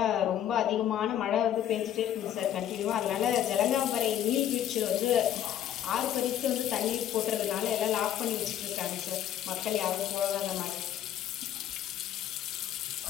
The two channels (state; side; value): quieter; right; 10.9 dB